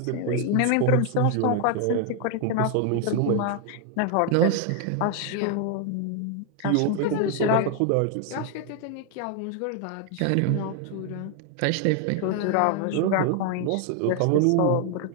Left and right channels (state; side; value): different; both; correlation 0.00